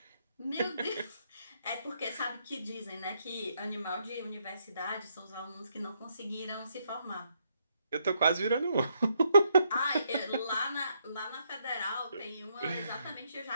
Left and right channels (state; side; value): inverted; both; correlation -0.75